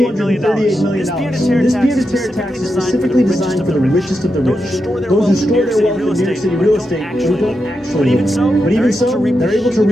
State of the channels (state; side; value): normal; both; correlation 0.87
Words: million. This peer-to-tear tax is specifically designed for the richest of the rich. Those who store their wealth in New York City real estate. But even so, they're able to